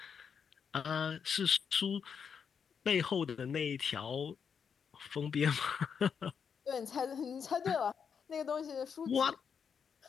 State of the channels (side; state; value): right; quieter; 6.8 dB